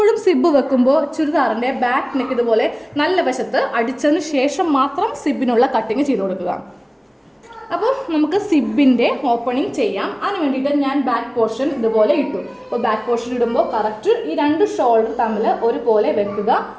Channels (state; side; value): identical; both; correlation 1.00